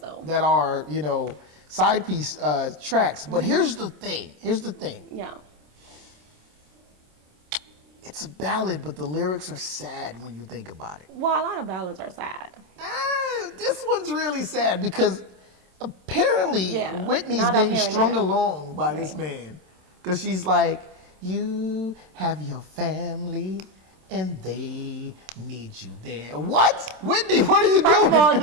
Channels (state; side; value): late; left; 27 ms